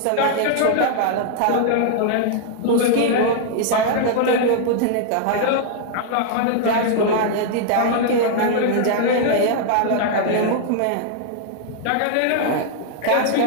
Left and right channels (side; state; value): both; different; correlation 0.00